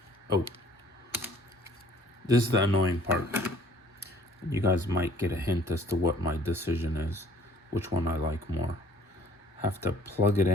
Oh, this is the annoying part. You guys might get a hint as to what my decision is, which one I like more. Have to plug it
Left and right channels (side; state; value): both; normal; correlation 0.56